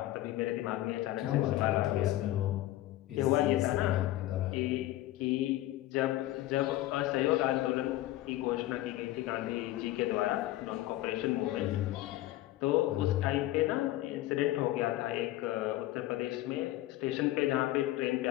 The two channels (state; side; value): quieter; right; 15.6 dB